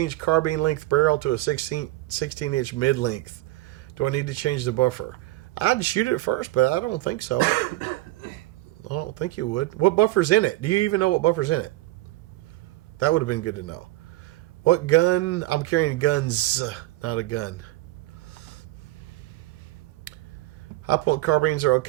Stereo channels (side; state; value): left; quieter; 17.7 dB